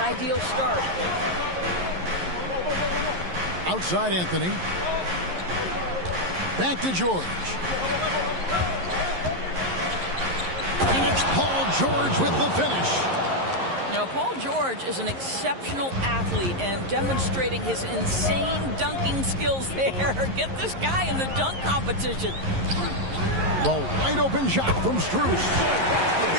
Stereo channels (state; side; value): late; left; 11 ms